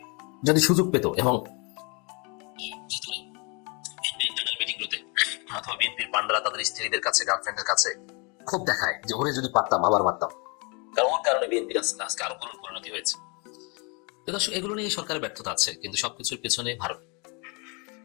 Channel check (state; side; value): quieter; right; 31.9 dB